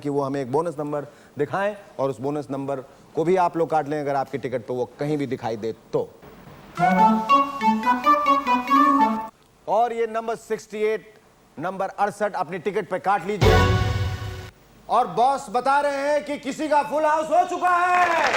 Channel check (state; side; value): identical; both; correlation 1.00